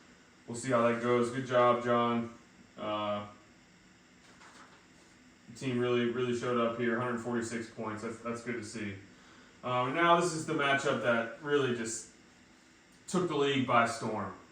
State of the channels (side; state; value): both; identical; correlation 1.00